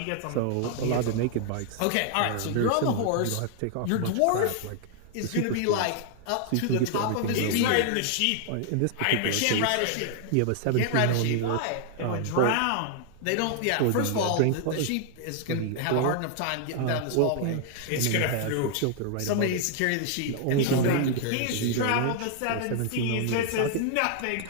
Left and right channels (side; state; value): both; different; correlation 0.00